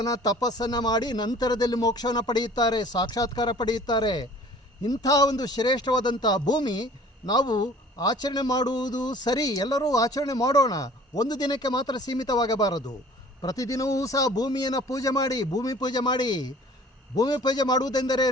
ತಪಸ್ಸನ್ನು ಮಾಡಿ ನಂತರದಲ್ಲಿ ಮೋಕ್ಷವನ್ನು ಪಡೆಯುತ್ತಾರೆ, ಸಾಕ್ಷಾತ್ಕಾರ ಪಡೆಯುತ್ತಾರೆ. ಇಂಥ ಒಂದು ಶ್ರೇಷ್ಠವಾದಂಥ ಭೂಮಿ ನಾವು ಆಚರಣೆ ಮಾಡುವುದು ಸರಿ, ಎಲ್ಲರೂ ಆಚರಣೆ ಮಾಡೋಣ. ಒಂದು ದಿನಕ್ಕೆ ಮಾತ್ರ ಸೀಮಿತವಾಗಬಾರದು. ಪ್ರತಿದಿನವೂ ಸಹ ಭೂಮಿಯನ್ನು ಪೂಜೆ ಮಾಡಿ, ಭೂಮಿ ಪೂಜೆ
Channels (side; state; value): both; normal; correlation 0.49